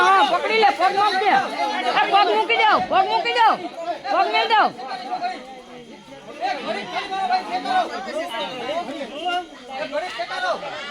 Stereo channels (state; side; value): identical; both; correlation 1.00